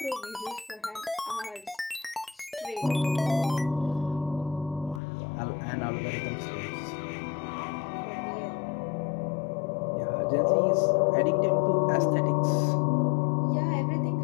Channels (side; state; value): right; drops out; at 5.0 s